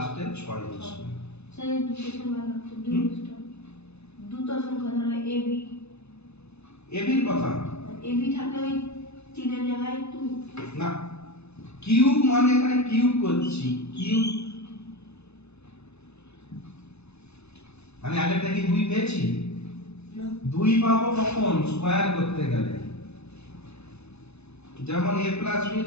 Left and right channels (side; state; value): right; late; 0.80 ms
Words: 6 বসবে। স্যার দুটো সংখ্যা থাকতো, দুটো সংখ্যা ধরো এবি, এবির কথা এবি থাকলে ওই 3 এর জায়গায় 2 না, কিউব মানে এখানে কিউব করছি, কিউব আমি আগেরটা কি 2 পেয়েছি, না 2 পাবো কখন, স্কয়ার করতে গেলে, যেমন a প্লাস b